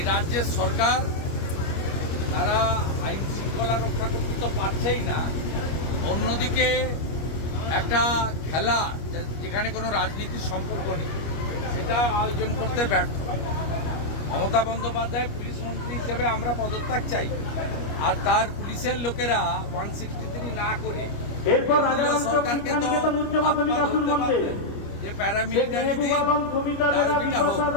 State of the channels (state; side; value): late; right; 25 ms